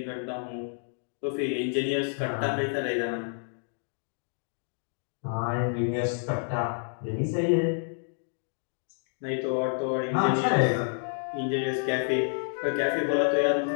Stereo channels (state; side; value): silent; right; digital silence